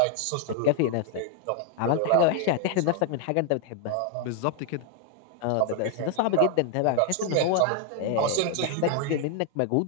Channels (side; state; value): both; different; correlation 0.00